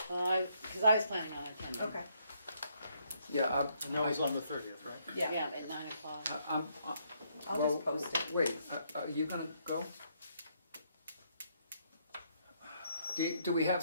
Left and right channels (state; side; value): inverted; both; correlation -0.72